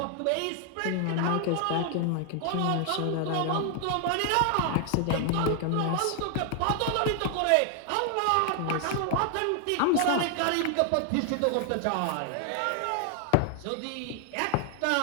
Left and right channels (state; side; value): different; both; correlation 0.00